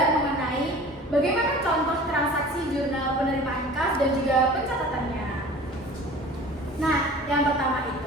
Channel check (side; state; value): both; normal; correlation 0.43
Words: mengenai bagaimana contoh transaksi jurnal penerimaan kas dan juga pencatatannya. Nah yang pertama